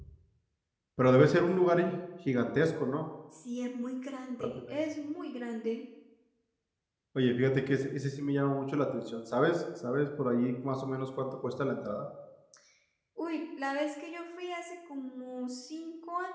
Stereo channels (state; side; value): identical; both; correlation 1.00